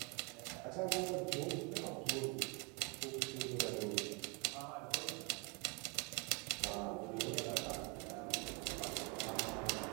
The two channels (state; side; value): quieter; left; 32.7 dB